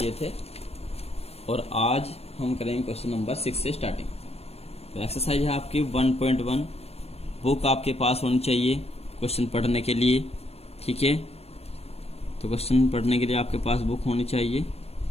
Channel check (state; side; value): late; right; 0.29 ms